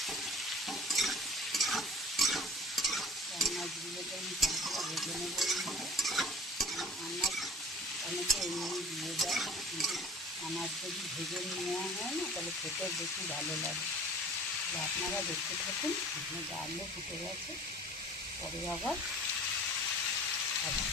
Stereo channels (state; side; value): normal; both; correlation 0.46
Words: আনাজগুলোকে আমি ভালো করে ভেজে নেবো। আনাজ অনেকে এমনি দিয়ে দেয়, কিন্তু আনাজ যদি ভেজে নেওয়া হয় না তাহলে খেতে বেশি ভালো লাগে। তো আপনারা দেখতে থাকুন। এখানে ডালও ফুটে গেছে, পরে আবার